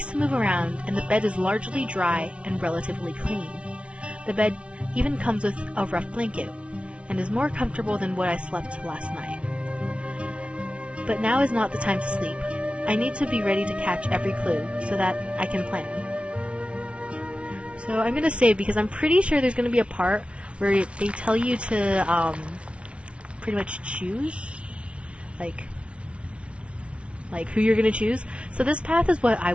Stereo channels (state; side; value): late; left; 0.060 ms